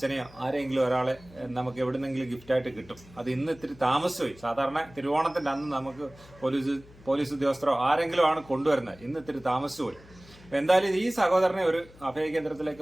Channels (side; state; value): left; noise; hum, 23 dB below the sound